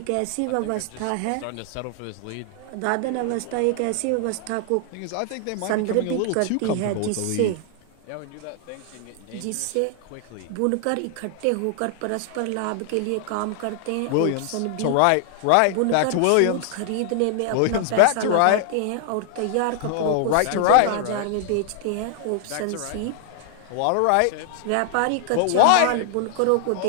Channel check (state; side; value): different; both; correlation 0.00